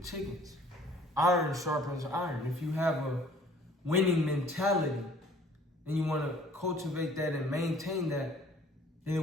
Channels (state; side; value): normal; both; correlation 0.54